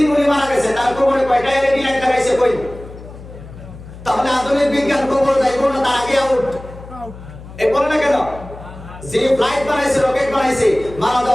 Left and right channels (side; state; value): left; noise; hum, 16 dB below the sound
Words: উনি মারা গেছে তার কবরে কয়টা এলইডি লাইট লাগাইছে? কই? তাহলে আধুনিক বিজ্ঞান কবর যাইব না, তার আগে আউট। এই বলে না কেন? যে ফ্লাইট বানাইছে, রকেট বানাইছে, মারা